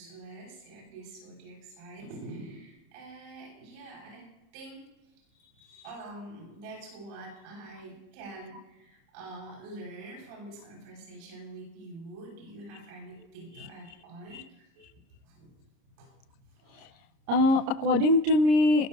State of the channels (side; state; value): left; late; 30 ms